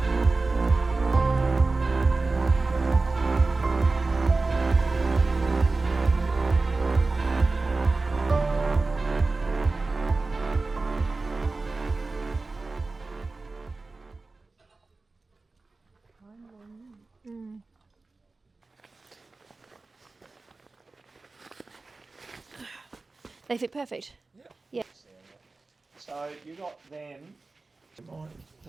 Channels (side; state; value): left; quieter; 3.6 dB